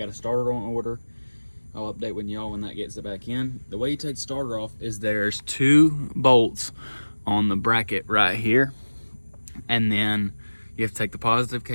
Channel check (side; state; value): both; inverted; correlation -1.00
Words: a starter on order. I'll update with y'all when that gets it back in. The way you take the starter off is there's 2 bolts on the bracket right here, and then you have to take the positive